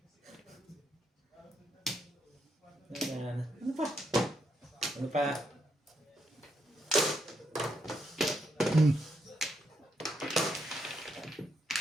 Ano pa? Ano pa?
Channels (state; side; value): normal; both; correlation 0.78